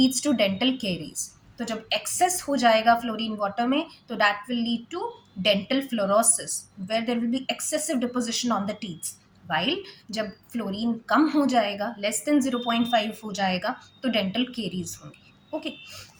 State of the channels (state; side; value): identical; both; correlation 1.00